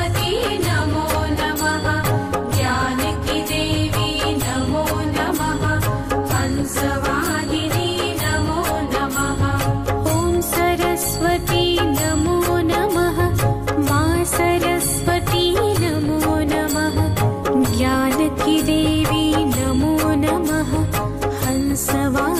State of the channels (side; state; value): both; identical; correlation 1.00